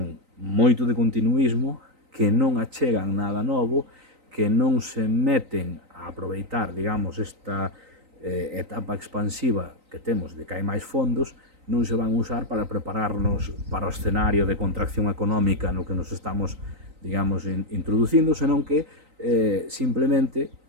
moito de continuismo, que non achegan nada novo, que non se meten a aproveitar, digamos, esta etapa expansiva que temos de que hai máis fondos, non se van usar para prepararnos para o escenario de contracción económica no que nos estamos, digamos, introducindo, senón que simplemente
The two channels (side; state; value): left; late; 3.9 ms